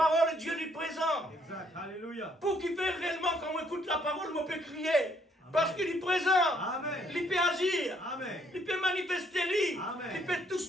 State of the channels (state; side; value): normal; both; correlation 0.68